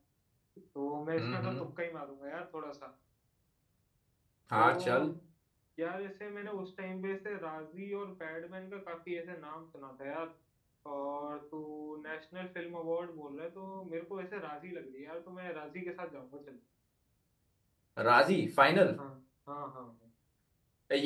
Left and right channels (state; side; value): identical; both; correlation 1.00